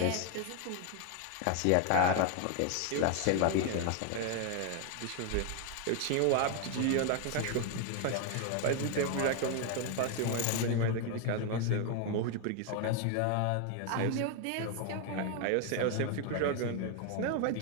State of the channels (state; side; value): different; both; correlation 0.01